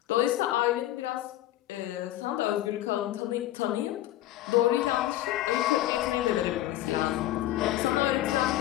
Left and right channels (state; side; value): quieter; right; 14.5 dB